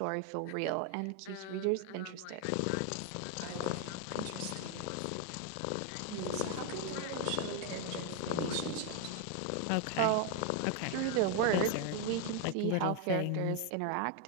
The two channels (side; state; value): both; different; correlation 0.01